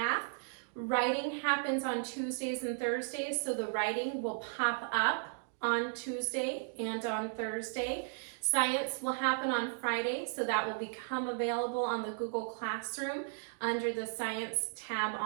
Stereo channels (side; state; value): left; silent; digital silence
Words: Writing happens on Tuesdays and Thursdays, so the writing will pop up on Tuesday and on Thursday. Science will happen on Friday, so that will become available on the Google Classroom under the Science tab